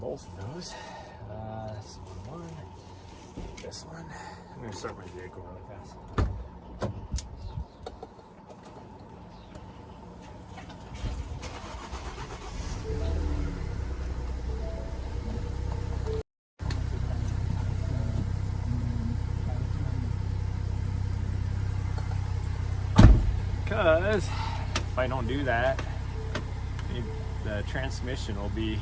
of those. That's one. This one. I'm going to start my vehicle really fast. Because if I don't do that, the transmission will be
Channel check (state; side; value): identical; both; correlation 1.00